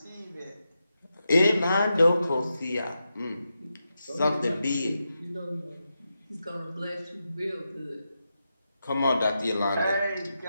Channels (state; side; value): inverted; both; correlation -0.88